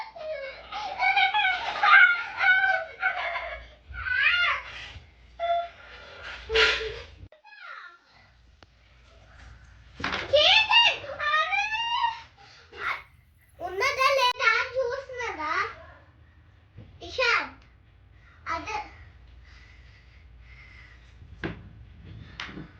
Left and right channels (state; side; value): identical; both; correlation 1.00